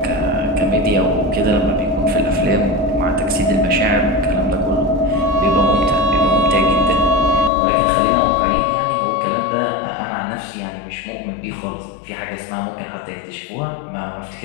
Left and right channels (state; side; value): drops out; right; at 7.5 s